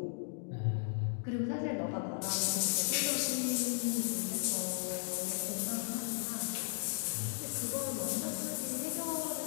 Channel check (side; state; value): right; silent; digital silence